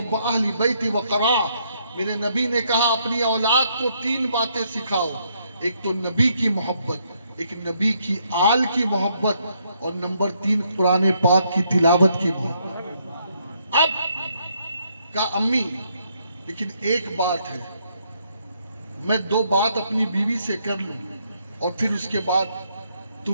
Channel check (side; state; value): both; inverted; correlation -0.72